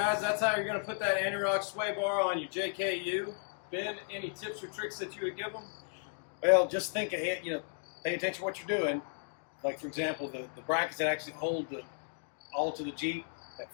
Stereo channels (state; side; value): silent; right; digital silence